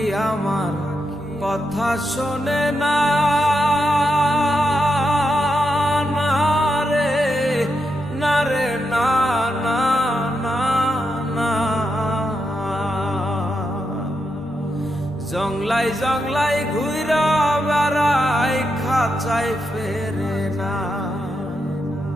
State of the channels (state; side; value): normal; both; correlation 0.84